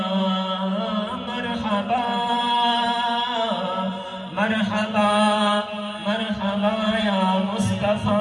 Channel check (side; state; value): both; identical; correlation 1.00